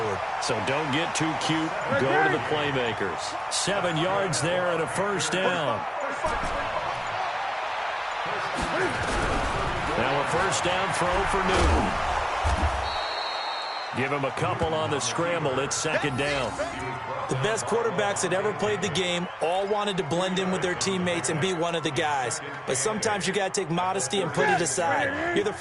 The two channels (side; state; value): both; identical; correlation 1.00